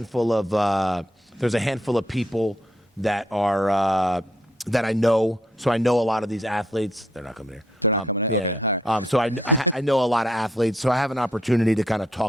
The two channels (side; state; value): both; normal; correlation 0.73